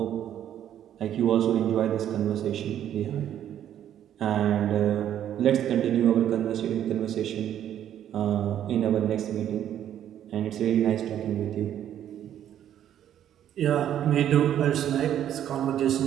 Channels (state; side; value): quieter; left; 10.6 dB